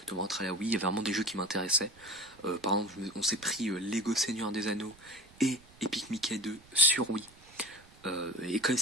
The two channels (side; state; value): right; noise; rumble, 25 dB below the sound